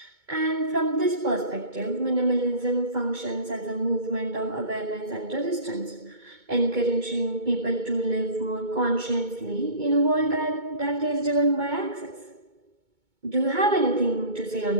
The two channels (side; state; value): left; late; 2.2 ms